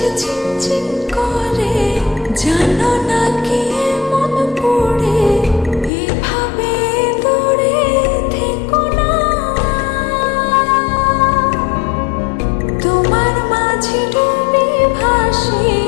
ঝিনঝিন করে জানো না কি মন পড়ে এভাবে দূরে থেকো না তোমার মাঝে ডুবে ভাসি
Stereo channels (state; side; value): drops out; right; at 5.9 s